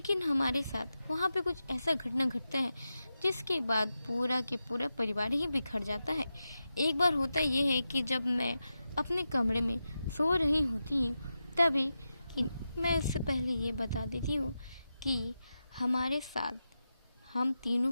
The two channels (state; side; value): inverted; both; correlation -0.90